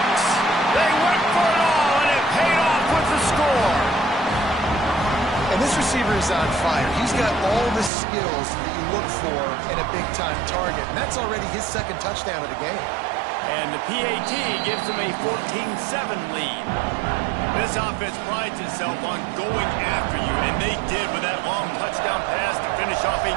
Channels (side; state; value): left; drops out; at 7.9 s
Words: They went for it all, and it paid off with the score. And this receiver is on fire. He's got all the skills that you look for in a big-time target. And that's already his second touchdown of the game. And the PAT gives them a 14-7 lead. This offense prides itself on going after you, and they did with that long touchdown pass to finish off a